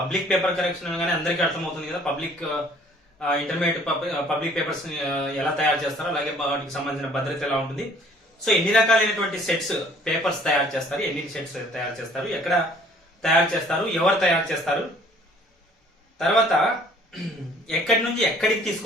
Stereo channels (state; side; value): normal; both; correlation 0.56